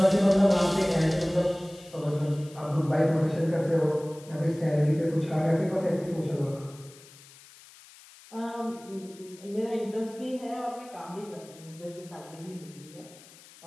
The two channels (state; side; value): noise; left; hiss, 22 dB below the sound